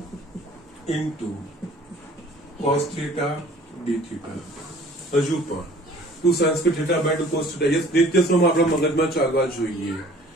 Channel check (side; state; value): both; normal; correlation 0.51